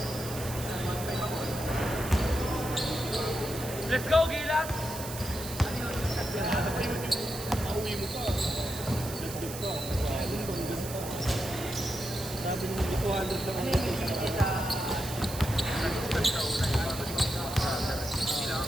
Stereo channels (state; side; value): noise; right; hiss, 10 dB below the sound